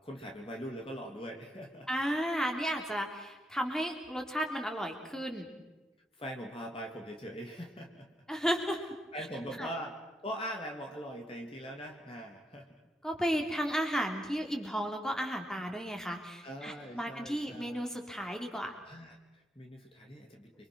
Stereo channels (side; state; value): both; normal; correlation 0.79